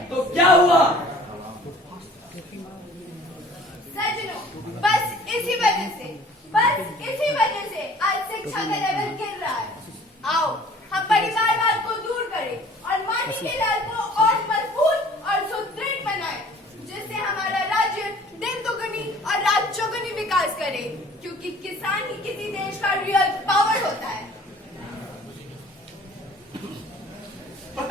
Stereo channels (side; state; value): both; normal; correlation 0.51